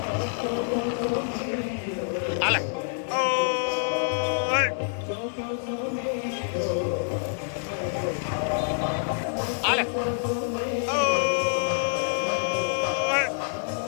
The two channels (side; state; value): right; silent; digital silence